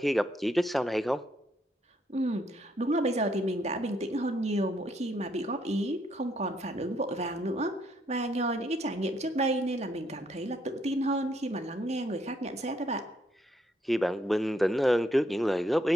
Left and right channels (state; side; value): normal; both; correlation 0.72